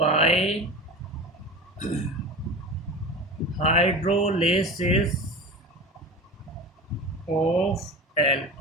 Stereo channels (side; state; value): both; normal; correlation 0.31